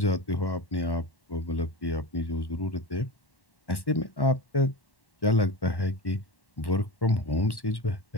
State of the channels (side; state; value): right; late; 1.1 ms